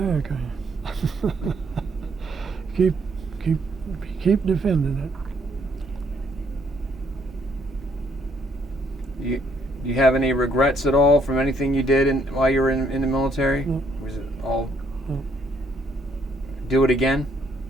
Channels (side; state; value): both; normal; correlation 0.69